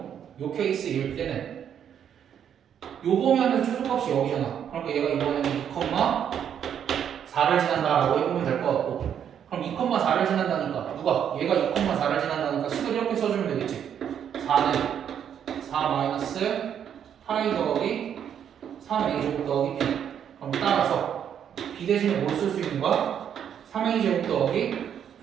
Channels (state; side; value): quieter; left; 8.8 dB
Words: 요 케이스일 때는 요 보면은 최소값이 여기잖아 그러니까 얘가 이번에는 2,4를 지난다라고 해보면 될 것 같고 그럼 2,4를 지난다니까 누가? 얘가 2,4를 지난다니까 식을 이렇게 써주면 되겠지 4는 4 마이너스 8a 더하기 3a 제곱 더하기 b 그럼 따라서 b 대신에 뭘 쓸 수 있는 거야? 3a 제곱 더하기